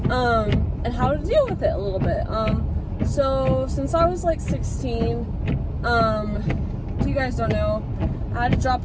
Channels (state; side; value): identical; both; correlation 1.00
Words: and how to deal with it a little bit. So since I was like 16, if you guys don't know, I had to drop